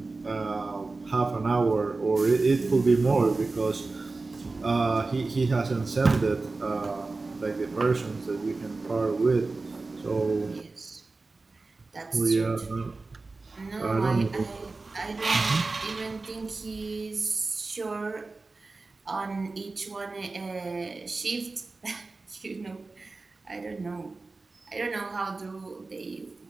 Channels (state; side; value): quieter; left; 3.6 dB